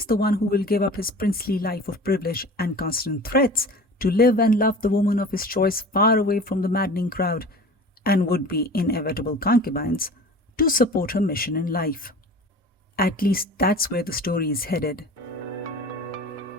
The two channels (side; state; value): both; normal; correlation 0.40